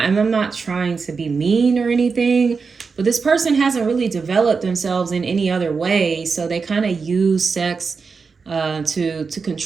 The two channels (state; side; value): quieter; left; 5.0 dB